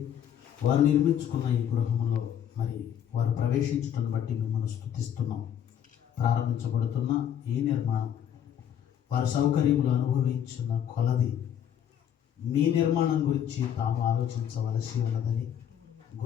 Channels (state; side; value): quieter; right; 9.5 dB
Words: వారు నిర్మించుకున్న ఈ గృహంలో మరి వారు ప్రవేశించడం బట్టి మిమ్మల్ని స్తుతిస్తున్నాం. ప్రారంభించబడుతున్న ఈ నిర్మాణం వారి సౌకర్యములు అనుభవించిన కొలది మీ నిర్మాణం గురించి తాము ఆలోచించవలసి ఉన్నదని